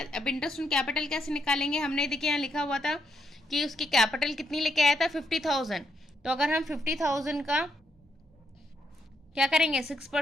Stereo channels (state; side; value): normal; both; correlation 0.78